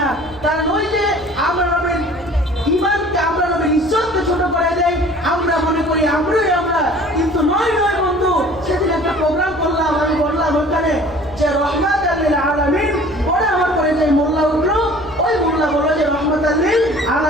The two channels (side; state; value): left; noise; rumble, 21 dB below the sound